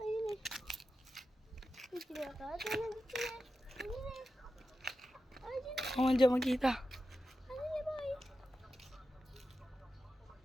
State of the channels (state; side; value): normal; both; correlation 0.91